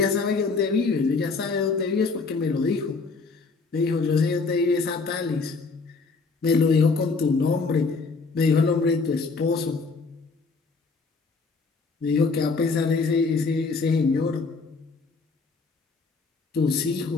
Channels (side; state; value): right; quieter; 4.3 dB